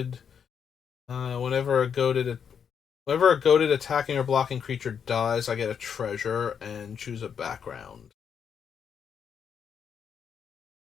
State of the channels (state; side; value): quieter; right; 7.4 dB